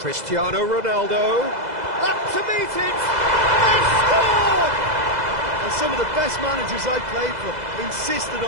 Ronaldo. Up to meet it! They've scored! And some of the best managers I played for insisted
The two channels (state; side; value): late; left; 2.0 ms